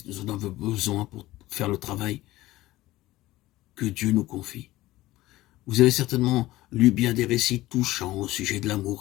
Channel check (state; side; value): quieter; right; 17.2 dB